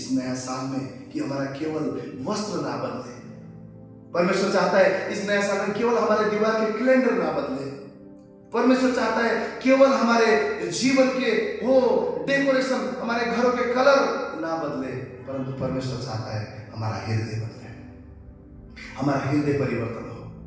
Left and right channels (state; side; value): identical; both; correlation 1.00